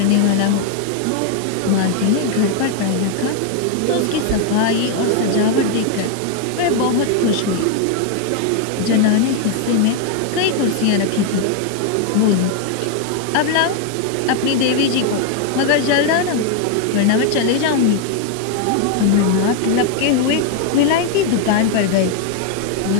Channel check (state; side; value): different; both; correlation 0.01